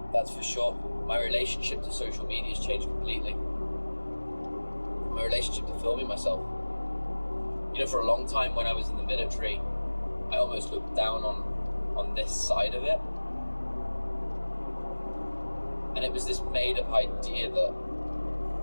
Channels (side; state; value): both; inverted; correlation -1.00